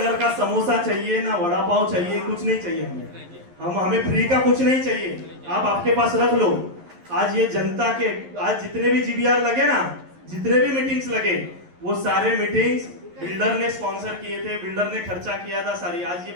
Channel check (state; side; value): late; left; 11 ms